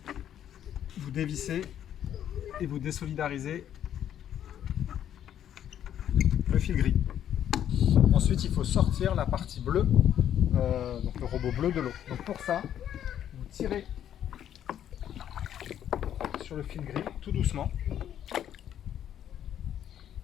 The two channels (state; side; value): quieter; right; 10.3 dB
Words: vous dévissez et vous désolidarisez le fil gris. Ensuite, il faut sortir la partie bleue, donc le robot bleu de l'eau. Donc pour ça, vous tirez sur le fil gris tout doucement